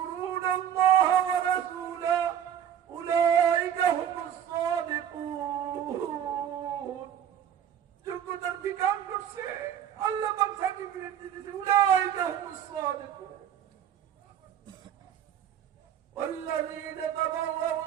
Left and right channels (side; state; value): left; quieter; 9.5 dB